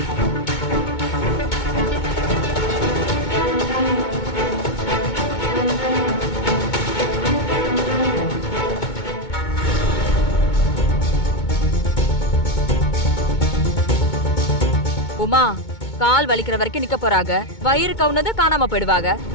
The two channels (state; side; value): late; right; 2.2 ms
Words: உமா, கால் வலிக்கிற வரைக்கும் நிக்க போறாங்க. வயிறு கவுனது காணாம போயிடுவாங்க.